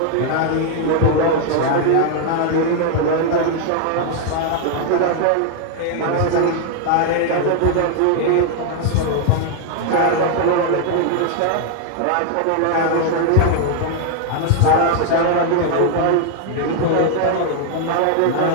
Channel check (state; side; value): different; both; correlation 0.00